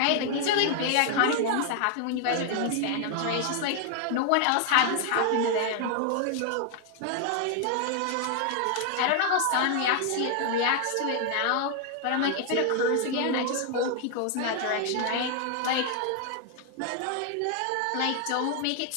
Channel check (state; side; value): different; both; correlation 0.00